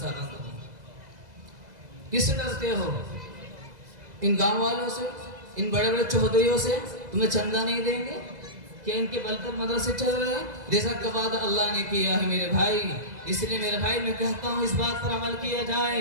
بند ہو. کس سے ڈرتے ہو؟ ان گاؤں والوں سے, ان بڑے بڑے چودھریوں سے تمہیں چندہ نہیں دیں گے کہ ان کے بل پر مدرسے چل رہے ہیں؟ جیسا کہ وعدہ اللہ نے کیا ہے میرے بھائی. اس لیے میرے بھائی میں کہتا ہوں اس بات پر عمل کیا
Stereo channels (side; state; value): left; late; 2.0 ms